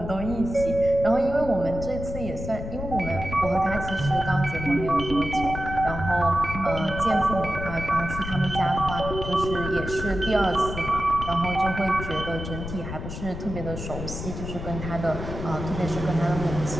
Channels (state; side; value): noise; left; rumble, 7 dB below the sound